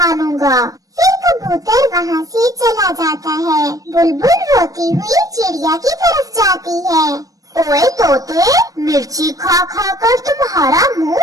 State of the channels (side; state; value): left; late; 0.17 ms